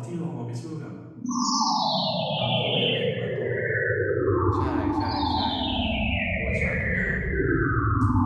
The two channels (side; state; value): both; identical; correlation 1.00